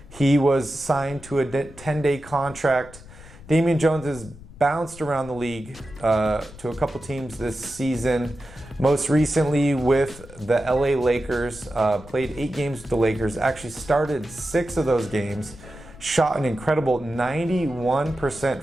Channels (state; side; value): noise; left; rumble, 19 dB below the sound